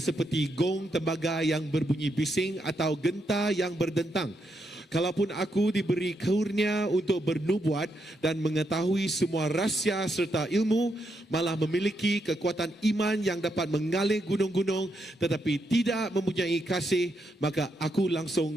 seperti gong tembaga yang berbunyi bising atau genta yang berdentang. Kalaupun aku diberi karunia untuk bernubuat dan mengetahui semua rahsia serta ilmu, malah memiliki kekuatan iman yang dapat mengalih gunung-gunung, tetapi tidak mempunyai kasih, maka aku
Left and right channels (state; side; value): normal; both; correlation 0.80